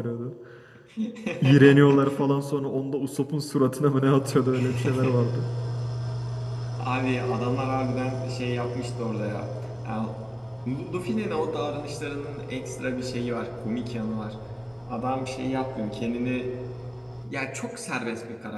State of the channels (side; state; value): both; identical; correlation 1.00